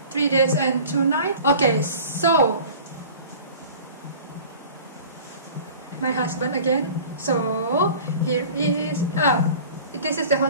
3 days and 2 nights. Okay, so my husband again. So here is this is the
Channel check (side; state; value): both; inverted; correlation -0.42